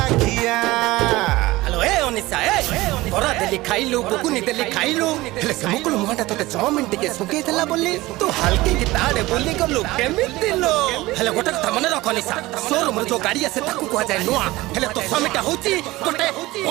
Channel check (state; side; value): quieter; left; 19.2 dB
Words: हेलो ए ओनिसा ए बरा देली खाइलु बुकुनी देली खाइलु हेले से मुकुल मुहाटा तोते 6 मिनिट के सुके देला बोली तू हल्के की ताड़े बोली गलु केमिति लो हेले गोटे कथा मने रख ओनिसा शोरूम रे जो गाड़ी आसे ताकू को जाय नुआ हेले तो समिटा होची गोटे